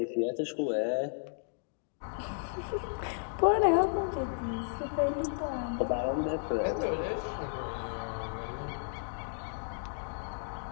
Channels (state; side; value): silent; right; digital silence